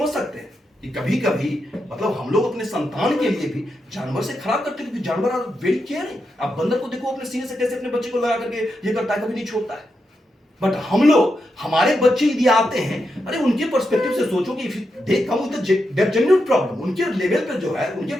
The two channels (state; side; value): normal; both; correlation 0.85